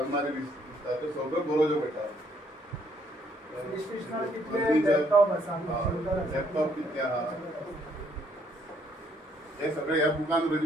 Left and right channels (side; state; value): both; normal; correlation 0.68